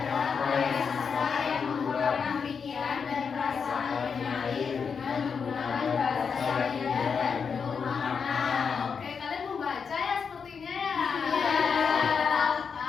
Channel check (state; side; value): quieter; right; 6.1 dB